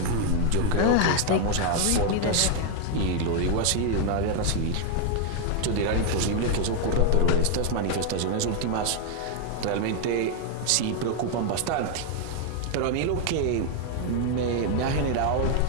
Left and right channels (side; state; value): both; different; correlation 0.00